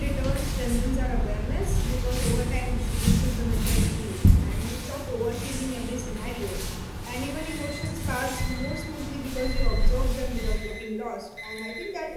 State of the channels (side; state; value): both; identical; correlation 1.00